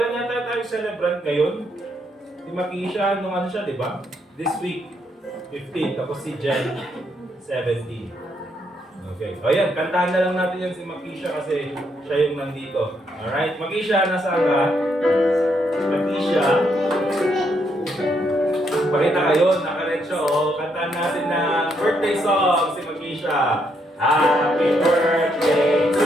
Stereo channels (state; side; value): normal; both; correlation 0.75